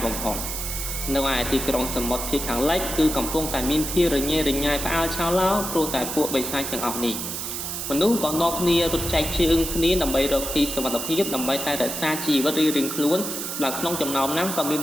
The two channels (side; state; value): right; noise; hiss, 5 dB below the sound